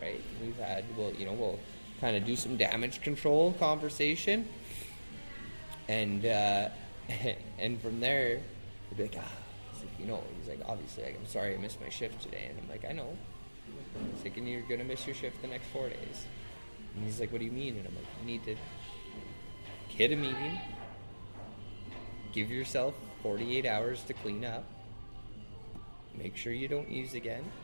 We'll kind of do some damage control conversation. And and from there, he'll be like, he's like, "Obviously, I'm sorry I missed my shift today." And I'm like, "I know." He's like, "And you're going to miss your shift the next 4 days." And he's like, "What do you mean?" And I'm like, "You need to hit a meeting, give yourself 48 hours to clean up, make sure you don't use again,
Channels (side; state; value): both; inverted; correlation -1.00